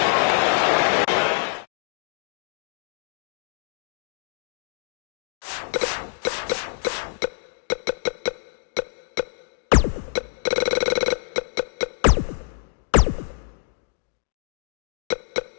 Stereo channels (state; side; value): silent; right; digital silence